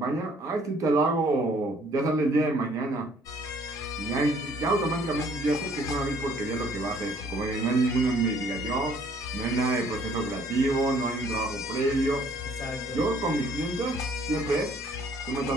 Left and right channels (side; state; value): both; normal; correlation 0.60